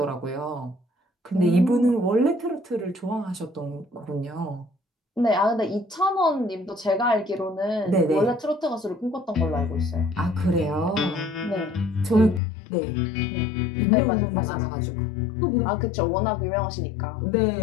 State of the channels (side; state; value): right; drops out; at 12.4 s